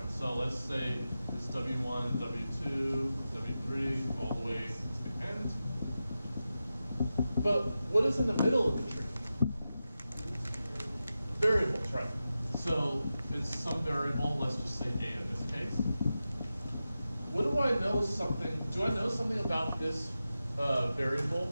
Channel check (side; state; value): both; inverted; correlation -0.92